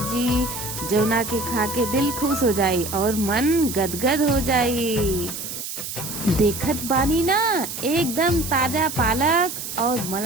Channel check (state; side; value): noise; right; hiss, 7 dB below the sound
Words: जौना के खा के दिल खुश हो जाई और मन गदगद हो जाई। देखत बानी ना एकदम ताजा पालक और